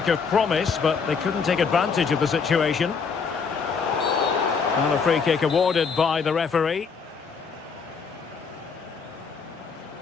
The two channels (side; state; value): right; quieter; 5.6 dB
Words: of promise, but they couldn't take advantage of the situation. And a free kick awarded by the referee.